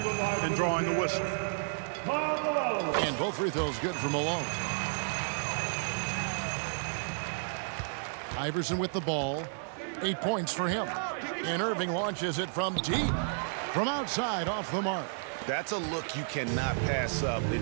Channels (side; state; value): left; silent; digital silence